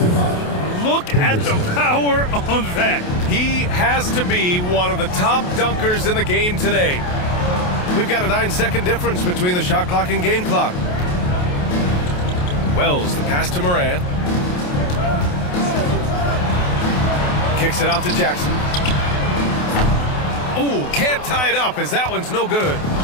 Look at the power on that. He has to be one of the top dunkers in the game today. We've got a 9-second difference between the shot clock and game clock. Wells, the pass to Moran. Kicks it out to Jackson. Ooh, can't tie it up as that one's no good.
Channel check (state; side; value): late; right; 28 ms